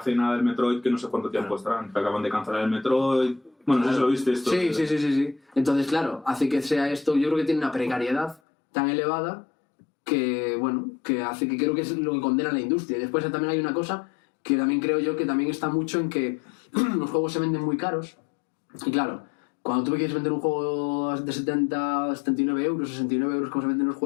nada del Metroid, que no sé cuánto tiempo estarán, que acaban de cancelar el Metroid. Bueno, no sé si lo viste esto. Sí. Entonces, claro, hace que sea esto, yo creo que tiene una precariedad tan elevada que, bueno, que hace que creo que es lo que condena a la industria. Y después también hay una cosa que también creo yo que también está mucho en que los juegos se venden muy caros. Y claro, cuando tú quieres vender un juego de 70, 79 euros, 69 euros como se venden los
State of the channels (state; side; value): drops out; right; at 8.4 s